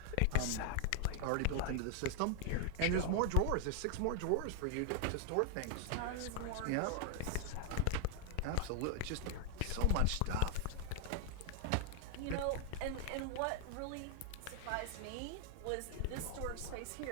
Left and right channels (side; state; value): both; different; correlation 0.00